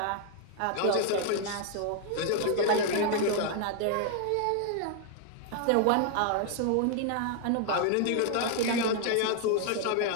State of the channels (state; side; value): different; both; correlation 0.00